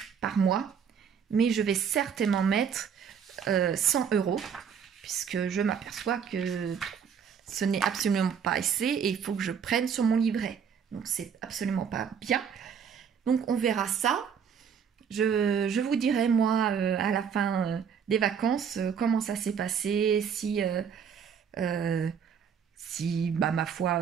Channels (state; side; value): quieter; left; 7.2 dB